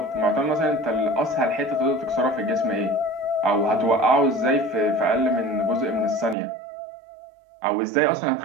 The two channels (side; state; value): left; drops out; at 6.4 s